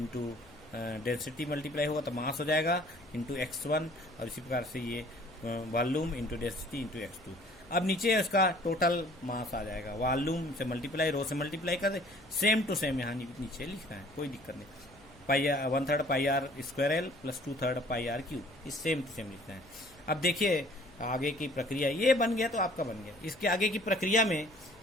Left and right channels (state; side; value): noise; left; hum, 25 dB below the sound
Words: डेंसिटी मल्टीप्लाई होगा तो मास हो जाएगा इंटू x1, और इसी प्रकार से ये volume into density into x2। अब नीचे इसका टोटल मास आ जाएगा, वॉल्यूम से मल्टीप्लाई, रो से मल्टीप्लाई कर दे, सेम टू सेम यहाँ नीचे लिखना है, कोई दिक्कत नहीं। 1/3 pi are square l plus 2/3 pi r cube, इस सेम टू सेम लिखना है। अब देखिए आगे की प्रक्रिया, ये बन गया तो आपका बन गया। इसके आगे की प्रक्रिया में